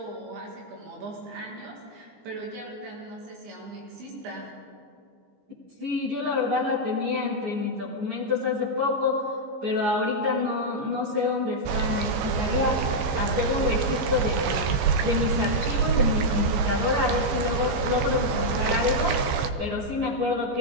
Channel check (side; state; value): left; late; 14 ms